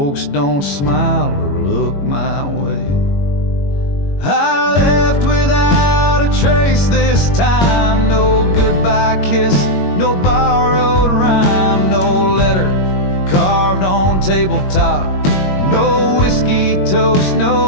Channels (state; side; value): late; right; 21 ms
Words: don't smile or look my way. I left without a trace this time. No goodbye kiss, no borrowed rhyme, no letter carved on tabletop, no whiskey toast,